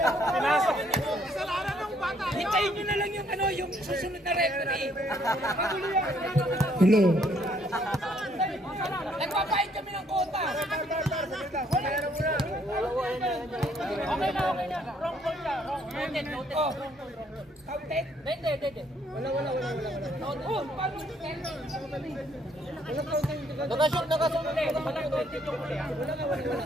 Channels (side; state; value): both; normal; correlation 0.67